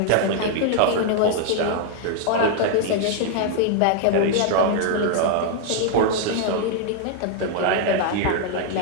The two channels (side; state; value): both; different; correlation 0.00